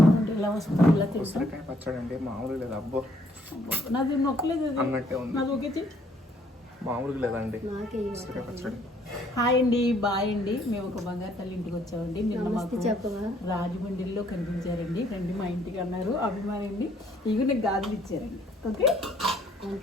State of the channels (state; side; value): normal; both; correlation 0.65